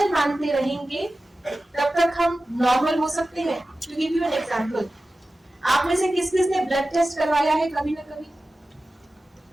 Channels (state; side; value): normal; both; correlation 0.95